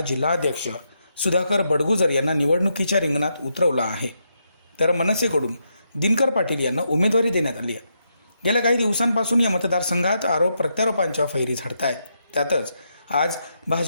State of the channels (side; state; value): both; inverted; correlation -0.81